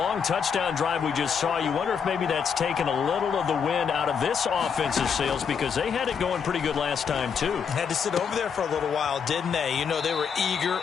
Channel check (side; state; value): right; quieter; 6.7 dB